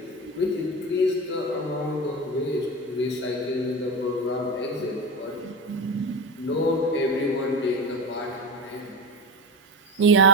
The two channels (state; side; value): normal; both; correlation 0.22